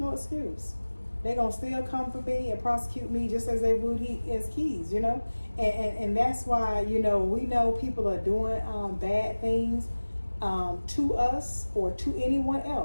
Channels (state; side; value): inverted; both; correlation -1.00